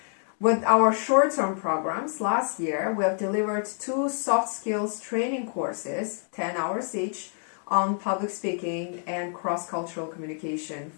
With our short-term programs, last year we have delivered 2 soft skills training courses, 10 hours each, on public speaking and cross-cultural communication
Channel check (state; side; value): silent; right; 56 dB below the other